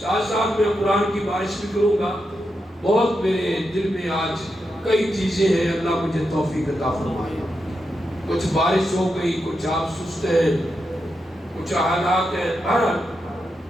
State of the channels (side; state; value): both; normal; correlation 0.86